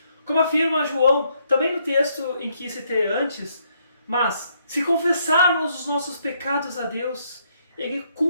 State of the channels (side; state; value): both; inverted; correlation -0.72